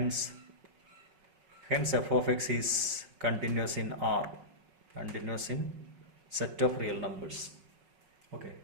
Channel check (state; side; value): late; left; 5.4 ms